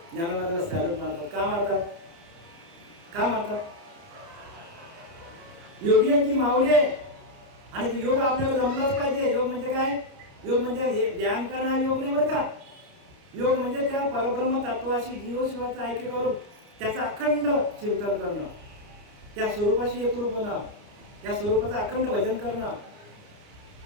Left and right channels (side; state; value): left; late; 30 ms